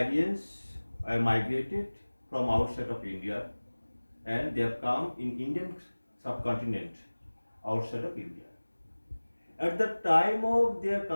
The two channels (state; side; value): inverted; both; correlation -1.00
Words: are migrated from outside of India and they have come in Indian subcontinent outside of India. At the time of their